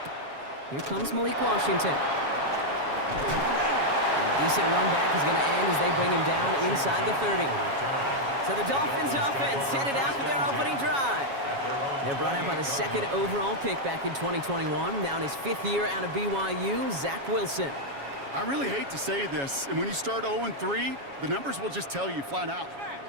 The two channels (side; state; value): left; late; 7.2 ms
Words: Here comes Malik Washington. And a decent run back is going to end as they bring him down inside the 30. So the Dolphins offense headed out for their opening drive. They're brought out by the 2nd overall pick back in 2021. Now in his 5th year out of BYU, Zach Wilson. I really hate to say this, and when you start 0-3, the numbers will just tell you flat out.